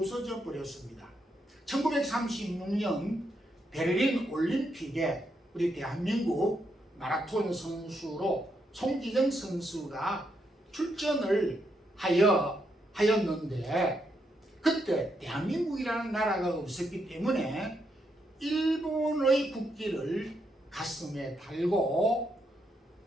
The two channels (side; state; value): both; normal; correlation 0.79